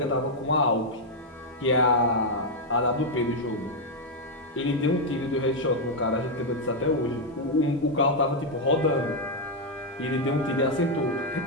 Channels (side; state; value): both; normal; correlation -0.01